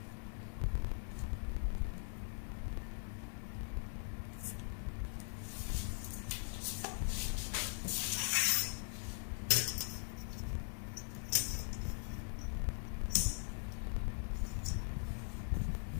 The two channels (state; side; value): silent; right; digital silence